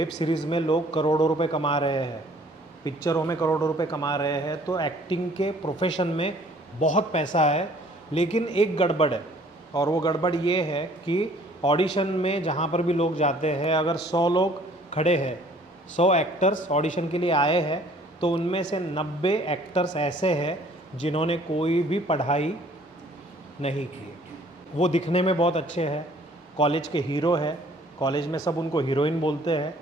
सीरीज़ में लोग करोड़ों रुपए कमा रहे हैं, पिक्चरों में करोड़ों रुपए कमा रहे हैं। तो एक्टिंग के प्रोफेशन में बहुत पैसा है, लेकिन एक गड़बड़ है, और वो गड़बड़ ये है कि ऑडिशन में जहाँ पर भी लोग जाते हैं, अगर 100 लोग खड़े हैं, 100 एक्टर्स ऑडिशन के लिए आए हैं, तो उनमें से 90 एक्टर्स ऐसे हैं जिन्होंने कोई भी पढ़ाई नहीं किए। वो दिखने में बहुत अच्छे हैं, कॉलेज के हीरो है, कॉलेज में सब उनको हीरोइन बोलते हैं,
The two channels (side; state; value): both; normal; correlation 0.56